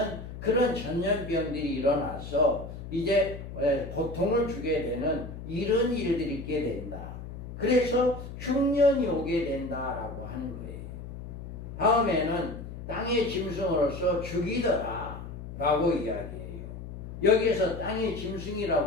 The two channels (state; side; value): noise; left; hum, 10 dB below the sound